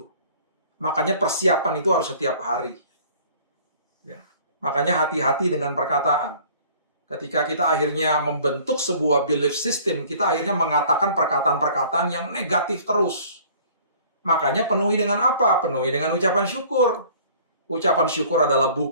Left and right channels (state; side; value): inverted; both; correlation -0.51